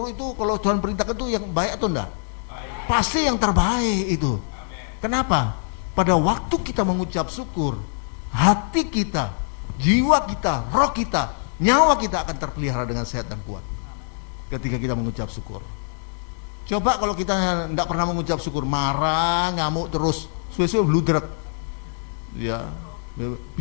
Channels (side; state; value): right; silent; digital silence